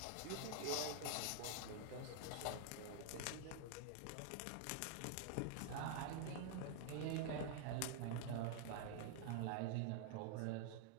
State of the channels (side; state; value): both; different; correlation 0.00